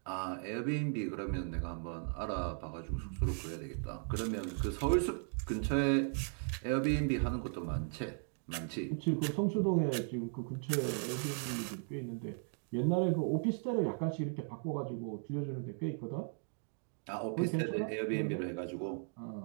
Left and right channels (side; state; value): left; silent; 53 dB below the other